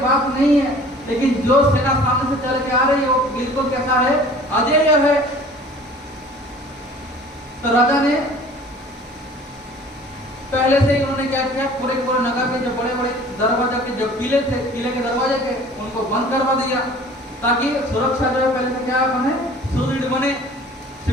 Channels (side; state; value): both; normal; correlation 0.47